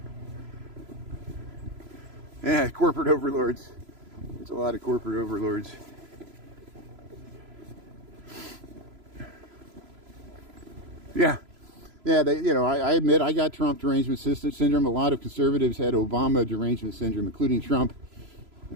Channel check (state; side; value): late; left; 3.0 ms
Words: Yeah, corporate overlords. There's a lot of corporate overlords. Yeah, they, you know, I admit I got Trump derangement syndrome. A lot of conservatives had Obama derangement syndrome, including Trump,